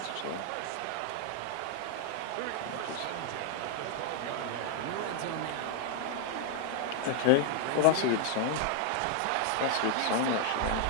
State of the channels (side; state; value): both; different; correlation 0.00